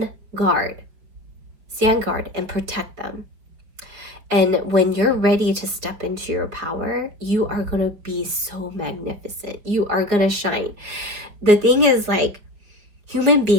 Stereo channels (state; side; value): late; left; 5.0 ms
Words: guard. Stand guard and protect them. And when you're ready to step into your power, you are going to be so magnificent. You are going to shine. The thing is, like, human